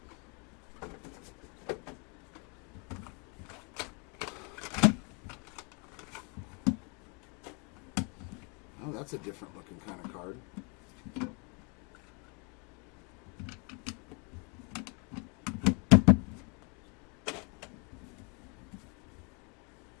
Oh, that's a different looking kind of card.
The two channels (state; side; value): quieter; right; 33.9 dB